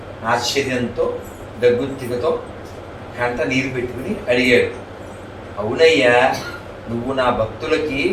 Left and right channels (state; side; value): identical; both; correlation 1.00